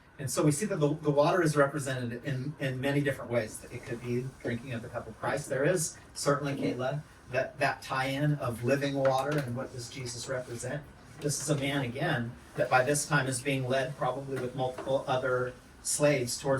And so we see that the water is represented in many different ways. It could be drinking of the cup of Christ. There is certainly, Kayla, that tie-in of living water, and what does Jesus represent? This is a man, again, that by this time is being led probably with multiple other slaves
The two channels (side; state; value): both; identical; correlation 1.00